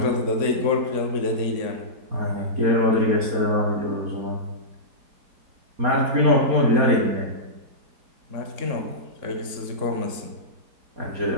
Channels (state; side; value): late; left; 4.2 ms